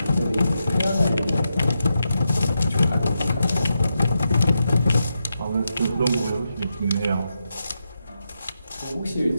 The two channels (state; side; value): inverted; both; correlation -0.86